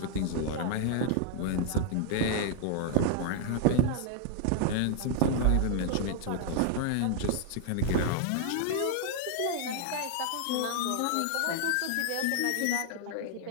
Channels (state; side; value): different; both; correlation 0.00